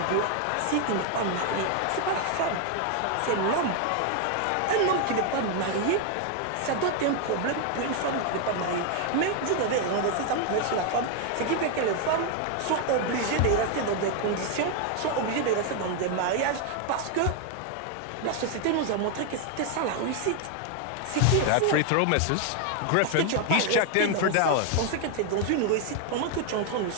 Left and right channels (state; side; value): different; both; correlation 0.00